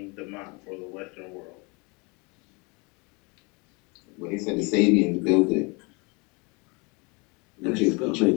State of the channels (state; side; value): quieter; right; 29.3 dB